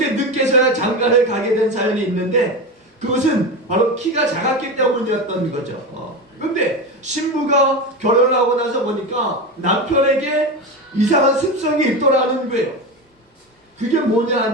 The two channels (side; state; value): both; normal; correlation 0.21